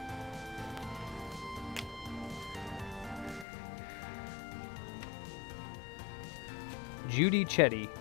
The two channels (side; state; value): right; drops out; at 3.5 s